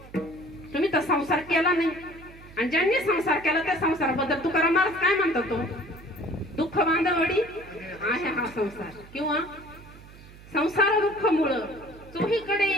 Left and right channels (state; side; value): noise; right; hum, 20 dB below the sound